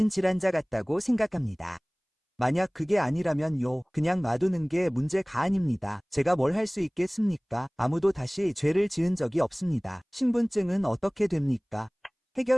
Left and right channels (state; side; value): identical; both; correlation 1.00